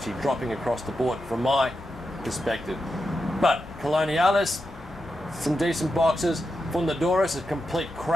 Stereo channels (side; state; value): both; normal; correlation 0.88